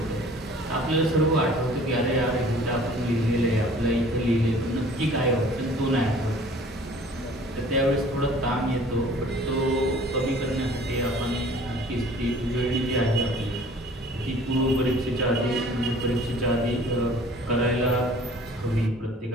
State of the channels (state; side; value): normal; both; correlation 0.50